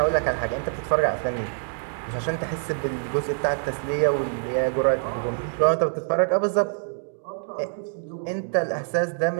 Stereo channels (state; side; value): silent; left; digital silence